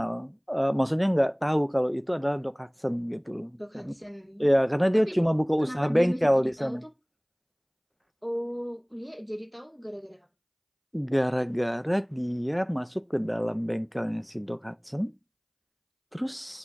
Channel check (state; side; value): identical; both; correlation 1.00